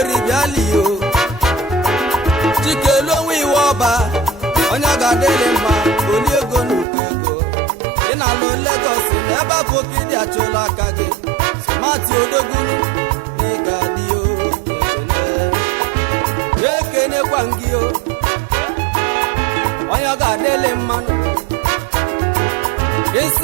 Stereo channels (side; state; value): left; drops out; at 6.9 s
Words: bịali yo chikelu onwe iwọba onye ọ ga-adịlị mma oli ego n'ukwu ego ị na-alụ Lagos na ebe afọ ka ịdị achụla aka gị sụmatụ odogwu na ị ga-adị yo ekenekwa gị yo onye ọ ga-adịlị mmanụ